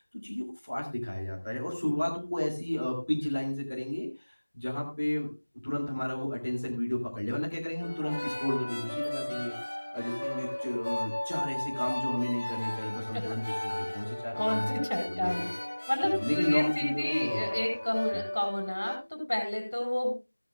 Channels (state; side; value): inverted; both; correlation -1.00